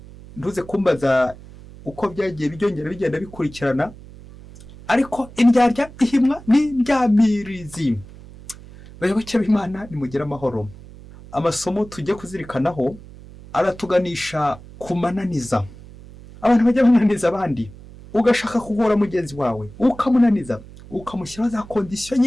Ntuze kumbaza uko byagiye byongera bigenda bikurikirana, ariko indyarya ihimwa n'indyamirizi. Bayoboke b'Imana, nimugire amahoro. Amasomo tujye kuzirikanaho aratuganisha kumananiza. Abantu bajya bananiza abandi, ugashaka kugora mugenzi wawe, ukamunaniza, ukamushyiraho za kondisiyo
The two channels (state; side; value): noise; right; hum, 18 dB below the sound